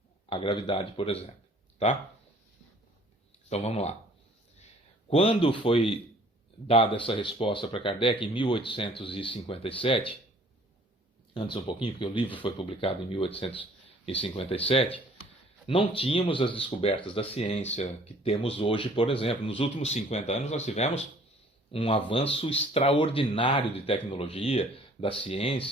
a gravidade, por exemplo. Tá? Então vamos lá. Quando foi dada essa resposta para Kardec, em 1857, antes um pouquinho, porque o livro foi publicado em 1857, não tínhamos as descobertas da ciência que temos hoje, por exemplo. Nos últimos 50 anos nós tivemos um avanço extraordinário de tecnologia, da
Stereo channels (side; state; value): both; normal; correlation 0.55